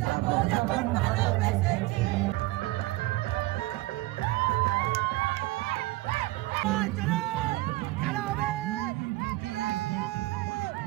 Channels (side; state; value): left; quieter; 19.0 dB